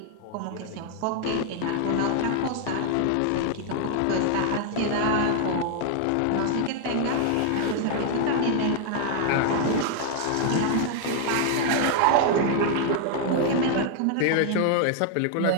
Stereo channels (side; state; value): both; different; correlation 0.00